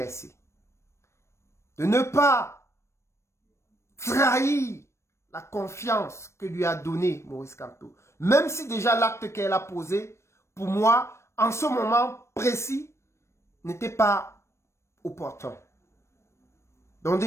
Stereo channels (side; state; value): right; late; 0.13 ms